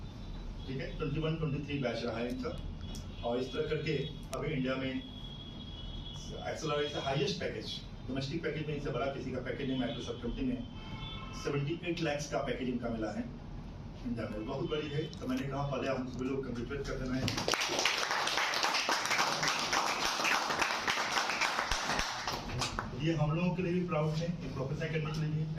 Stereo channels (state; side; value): identical; both; correlation 1.00